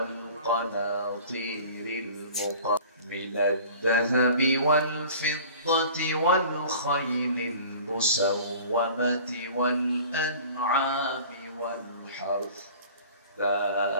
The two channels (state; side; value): inverted; both; correlation -0.44